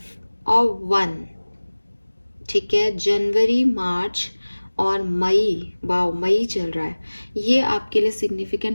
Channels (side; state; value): both; inverted; correlation -1.00